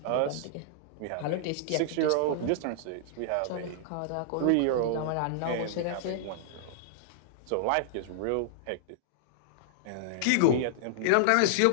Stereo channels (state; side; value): different; both; correlation -0.01